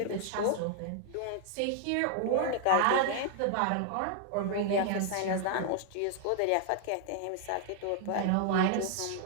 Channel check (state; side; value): different; both; correlation 0.00